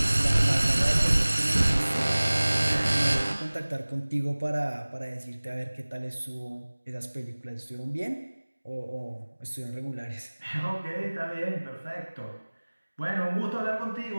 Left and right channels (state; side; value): inverted; both; correlation -1.00